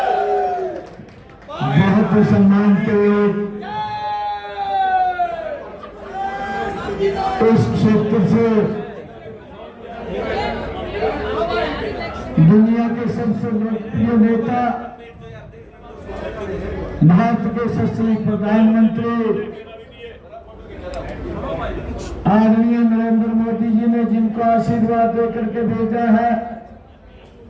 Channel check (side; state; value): both; identical; correlation 1.00